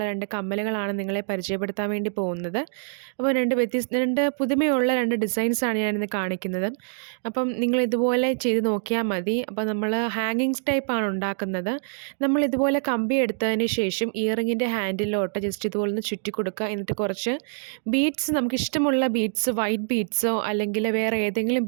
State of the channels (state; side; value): silent; left; digital silence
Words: 2 കമ്മലുകളാണ് നിങ്ങളെ പരിചയപ്പെടുത്താൻ വേണ്ടി പോകുന്നത്. അപ്പോൾ 2 പുതുമയുള്ള 2 ഡിസൈൻസാണ് ഞാനിന്ന് കാണിക്കുന്നത്. അപ്പം നിങ്ങൾ ഇതുപോലെ ചെയ്ത് നോക്കിയാൽ മതി. അപ്പോൾ നമ്മൾ ഹാങ്ങിങ്സ് ടൈപ്പാണ് ഉണ്ടാക്കുന്നത്. നമ്മൾ ഇതുപോലെ കമ്പി എടുത്തതിന് ശേഷം ഇയറിങ്ങിൻ്റെ ഹാൻഡിലോട്ട് ജസ്റ്റ് ഇതുപോലെ ഒന്ന് ചുറ്റി കൊടുക്കുക. എന്നിട്ട് കുറച്ച് ബീഡ്സ്, നമുക്കിഷ്ടമുള്ള ബീഡ്സ്, വൈറ്റ് ബീഡ്സോ അല്ലെങ്കിൽ വേറെ ഏതെങ്കിലും